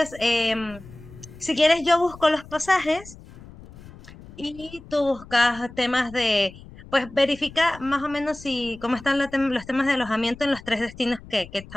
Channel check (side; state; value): left; noise; rumble, 18 dB below the sound